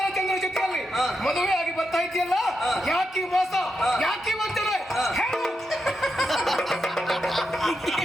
ಚಂದ್ರ ಜೊತೆಯಲ್ಲಿ ಮದುವೆ ಆಗಿ ಬರ್ತಾ ಇದ್ದೀಯಲ್ಲ, ಯಾಕೆ ಮೋಸ, ಯಾಕೆ ವಂಚನೆ ಹೇಳು.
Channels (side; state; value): both; normal; correlation 0.86